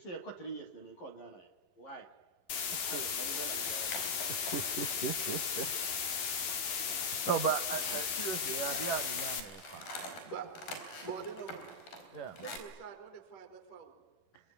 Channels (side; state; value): right; late; 11 ms